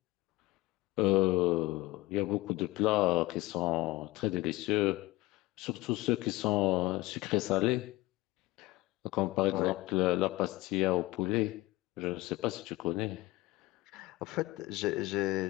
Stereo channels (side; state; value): right; quieter; 19.7 dB